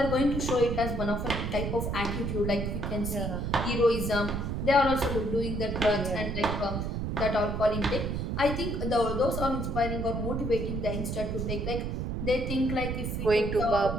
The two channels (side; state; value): right; noise; rumble, 2 dB below the sound